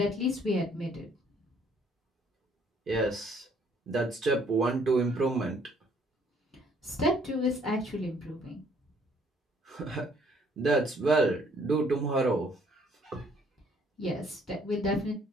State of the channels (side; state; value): both; normal; correlation 0.63